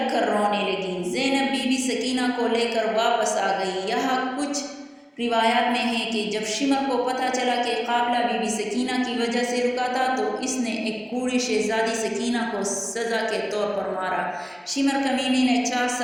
کر رونے لگی۔ زینب بی بی سکینہ کو لے کر واپس آ گئی۔ یہاں کچھ روایات میں ہے کہ جب شمر کو پتہ چلا کہ قافلہ بی بی سکینہ کی وجہ سے رکا تھا تو اس نے ایک بوڑھی شہزادی سکینہ کو سزا کے طور پر مارا۔ شمر کمینے نے 4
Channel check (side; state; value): both; identical; correlation 1.00